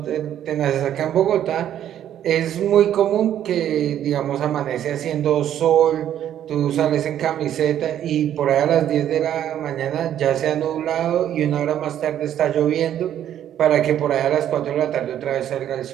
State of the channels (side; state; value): left; quieter; 10.8 dB